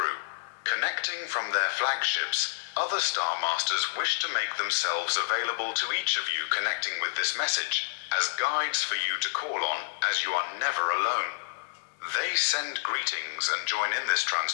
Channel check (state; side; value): silent; right; digital silence